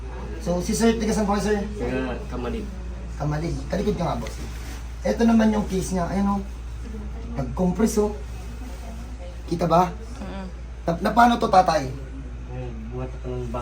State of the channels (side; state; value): both; identical; correlation 1.00